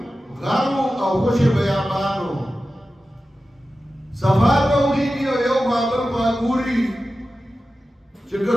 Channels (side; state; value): both; normal; correlation 0.94